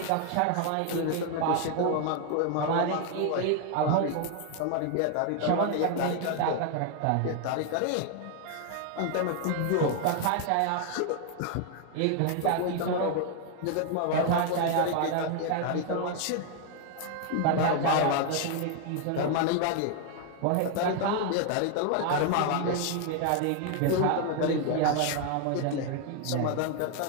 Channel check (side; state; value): both; different; correlation 0.00